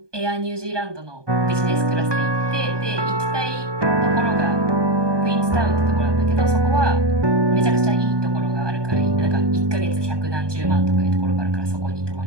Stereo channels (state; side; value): late; left; 1.2 ms